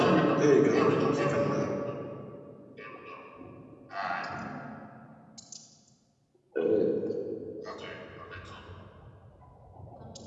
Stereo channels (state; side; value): identical; both; correlation 1.00